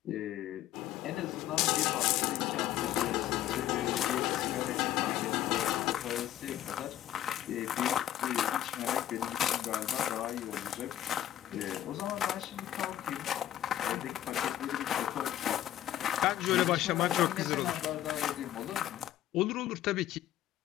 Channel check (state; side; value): quieter; right; 12.5 dB